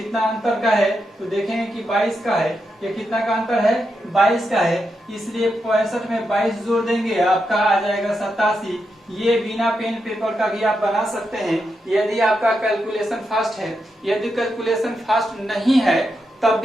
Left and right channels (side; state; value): both; normal; correlation 0.85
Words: अंतर का है, तो देखेंगे कि 22 का है। ये कितना का अंतर है? 22 का है। इसलिए 65 में 22 जोड़ देंगे, आपका आ जाएगा 87। ये बिना पेन पेपर का भी आप बना सकते हैं यदि आपका कैलकुलेशन फास्ट है। यदि कैलकुलेशन फास्ट नहीं है, तब